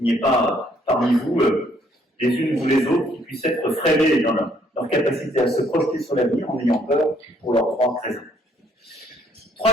n'y ait pas parmi vous les unes ou les autres qui puissent être freinés dans leur capacité à se projeter sur l'avenir en ayant peur pour leurs droits présents.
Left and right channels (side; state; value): both; normal; correlation 0.66